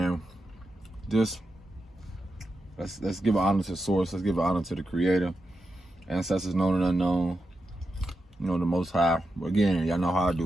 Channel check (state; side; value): normal; both; correlation 0.88